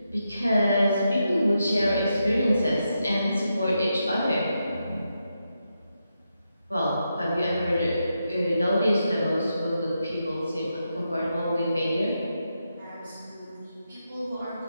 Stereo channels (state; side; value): inverted; both; correlation -0.85